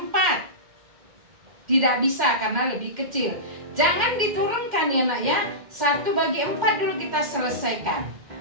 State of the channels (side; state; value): left; late; 2.1 ms